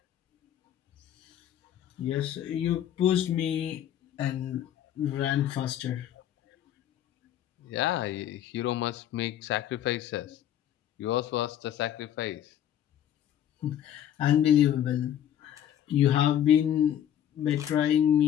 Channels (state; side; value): quieter; right; 10.7 dB